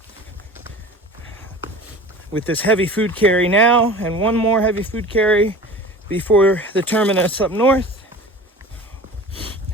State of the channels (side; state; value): both; normal; correlation 0.39